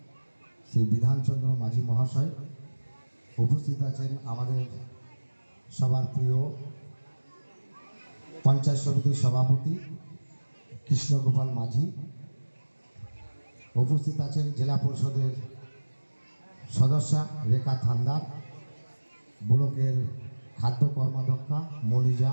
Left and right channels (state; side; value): inverted; both; correlation -1.00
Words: শ্রী বিধানচন্দ্র মাঝি মহাশয়। উপস্থিত আছেন আমাদের সবার প্রিয় পঞ্চায়েত সমিতির সভাপতি কৃষ্ণগোপাল মাঝি। উপস্থিত আছেন জেলা পরিষদের সদস্যা রেখা থান্দার, ব্লকের খাদ্য কর্মাধ্যক্ষা মনিজা,